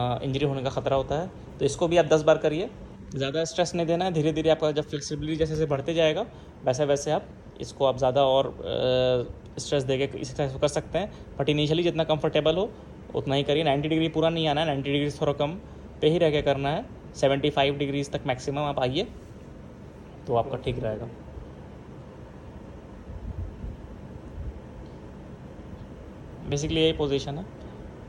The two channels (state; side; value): identical; both; correlation 1.00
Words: होने का ख़तरा होता है। तो इसको भी आप 10 बार करिए, ज़्यादा स्ट्रेस नहीं देना है। धीरे धीरे आपका जब फ्लेक्सिबिलिटी जैसे जैसे बढ़ते जाएगा वैसे वैसे आप इसको आप ज़्यादा और स्ट्रेस देके इस एक्सरसाइज को कर सकते हैं। बट इनिशियली जितना कंफर्टेबल हो उतना ही करिए। 90 डिग्री पूरा नहीं आना है, 90 डिग्री थोड़ा कम पे ही रह के करना है। 75 डिग्रीज तक मैक्सिमम आप आइए तो आपका ठीक रहेगा। बेसिकली यही पोजीशन है,